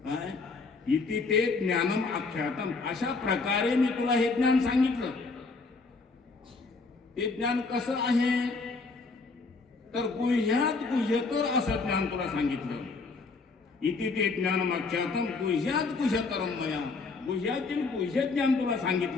इति ते ज्ञानम आख्यातम, अशा प्रकारे मी तुला हे ज्ञान सांगितलं. ते ज्ञान कसं आहे तर गुह्यात गुह्यतर असं ज्ञान तुला सांगितलं. इति ते ज्ञानम आख्यातम गुह्यात गुह्यतरम मया, गुह्यातील गुह्य ज्ञान तुला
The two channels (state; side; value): quieter; right; 4.0 dB